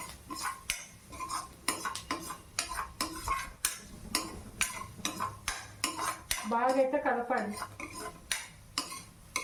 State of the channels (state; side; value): identical; both; correlation 1.00